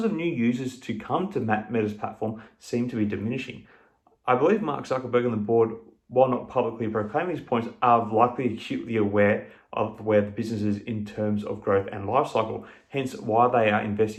of new users to come to Meta's platform seem to be diminishing. I believe Mark Zuckerberg and the board while not publicly proclaiming these points, are likely acutely aware of where the business is in terms of growth and life cycle, hence why they are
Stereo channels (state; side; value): identical; both; correlation 1.00